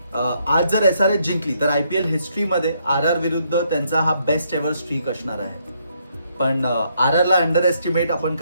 आज जर SRH जिंकली तर IPL हिस्ट्रीमध्ये RR विरुद्ध त्यांचा हा बेस्ट एव्हर स्ट्रीक असणार आहे. पण RRला अंडर एस्टिमेट आपण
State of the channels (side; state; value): both; inverted; correlation -0.73